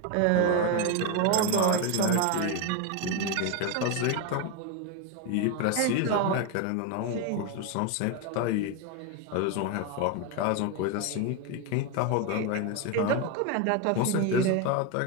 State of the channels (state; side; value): different; both; correlation 0.02